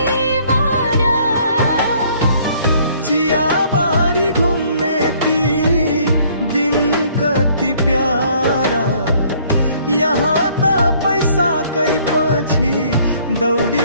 चियाबारी घुम्ने ती दिन कति प्यारा यहाँ त पैसाकै पछि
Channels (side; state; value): both; inverted; correlation -0.61